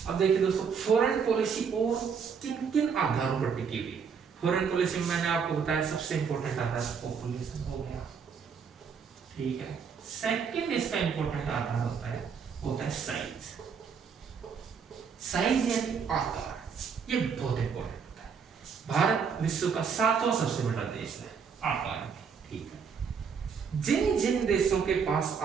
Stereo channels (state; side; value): quieter; left; 6.3 dB